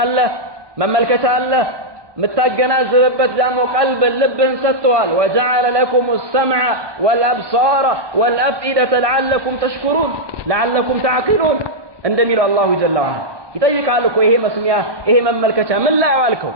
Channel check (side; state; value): left; late; 1.2 ms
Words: አለ፣ መመልከቻ አለ፣ የምታገናዝብበት ደግሞ ቀልብ ልብህን ሰጥተዋል። ወጀዐለ ለኩም ሰምዐ ወልአብሳረ ወልአፍኢደተ ለዐለኩም ተሽኩሩን ለዐለኩም ተዕቂሉን እንደሚለው አላሁ ጀለ ወዐላ ይጠይቃል እኮ ይሄ መስሚያ ይሄ መመልከቻ ምን ላይ አዋልከው?